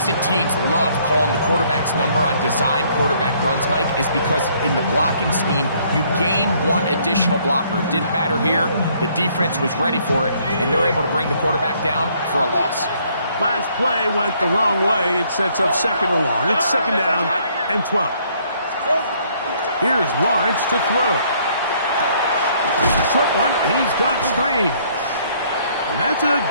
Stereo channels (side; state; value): both; inverted; correlation -0.65